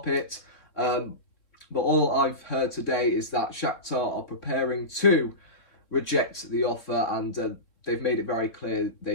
But all I've heard today is that Shakhtar are preparing to reject the offer, and they've made it very clear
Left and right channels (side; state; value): right; late; 3.8 ms